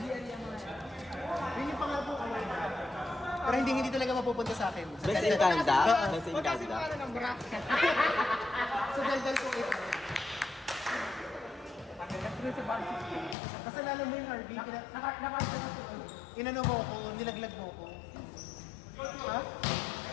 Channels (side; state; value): right; drops out; at 13.4 s